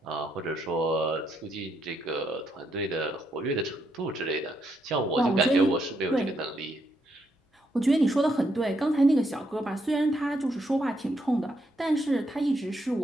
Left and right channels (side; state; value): both; normal; correlation 0.77